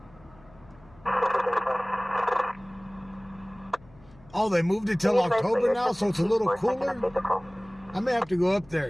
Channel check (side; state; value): left; noise; hum, 26 dB below the sound